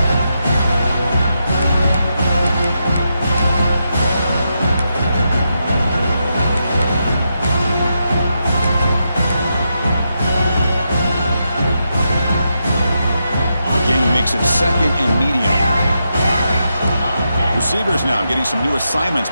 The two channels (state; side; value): inverted; both; correlation -0.84